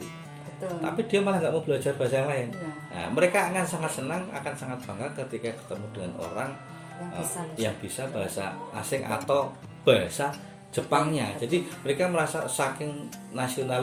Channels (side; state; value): both; identical; correlation 1.00